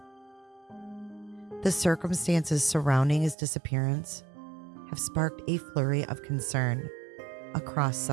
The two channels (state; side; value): drops out; left; at 3.4 s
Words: The circumstances surrounding his disappearance have sparked a flurry of concern across